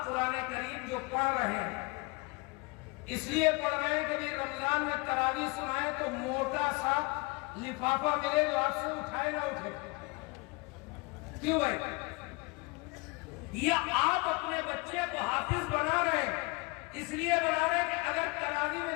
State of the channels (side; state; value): right; quieter; 27.7 dB